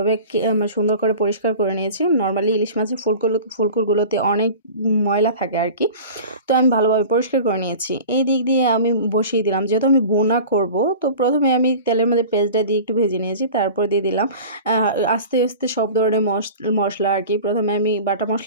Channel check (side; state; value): both; inverted; correlation -0.38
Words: সুন্দর করে পরিষ্কার করে নিয়েছি। নরমালি ইলিশ মাছের ফুলকুরগুলোতে অনেক ময়লা থাকে আর কি। তো আমি ভালোভাবে পরিষ্কার করে নিয়েছি। এই দিক দিয়ে আমি বসিয়ে দিলাম, যেহেতু আমি ভুনা করব। তো প্রথমে আমি তেলের মধ্যে পেঁয়াজটা দিয়ে একটু ভেজে নিয়েছি, তারপর দিয়ে দিলাম আস্তে আস্তে সব ধরনের মশলা আর কি। প্রথমে আমি বাটা